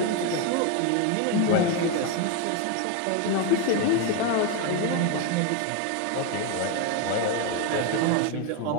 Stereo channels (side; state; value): both; different; correlation 0.02